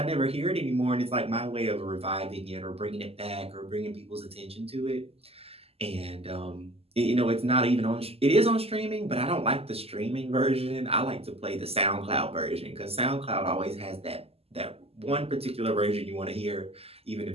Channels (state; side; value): late; left; 0.29 ms